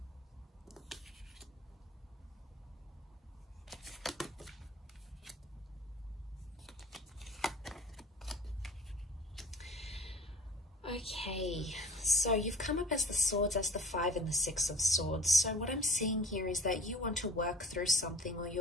Okay, so you've come up as the swords, as the 5 and the 6 of swords. So what I'm seeing here is that you want to work through something, or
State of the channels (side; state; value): both; normal; correlation 0.45